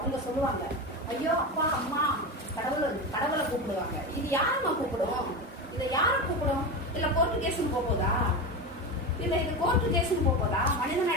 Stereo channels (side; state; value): both; normal; correlation 0.20